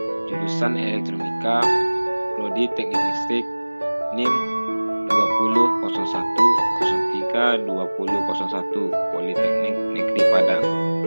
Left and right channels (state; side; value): inverted; both; correlation -1.00